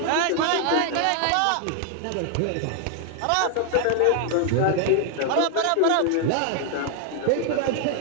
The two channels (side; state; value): both; different; correlation 0.00